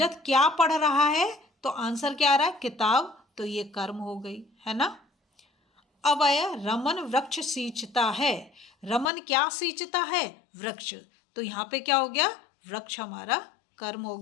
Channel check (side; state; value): right; drops out; at 9.1 s